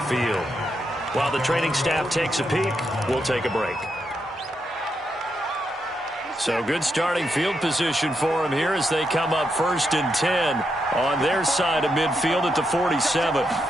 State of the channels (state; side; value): normal; both; correlation 0.82